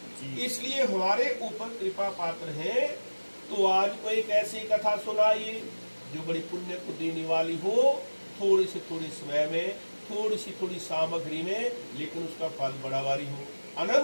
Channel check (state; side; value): inverted; both; correlation -1.00